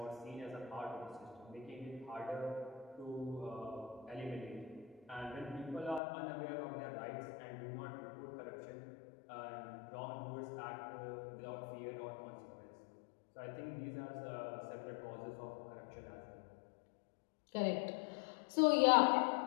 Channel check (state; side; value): drops out; right; at 6.0 s